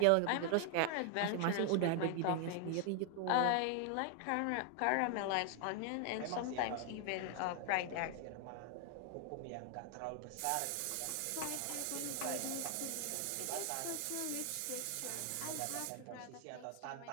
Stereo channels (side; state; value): both; different; correlation 0.00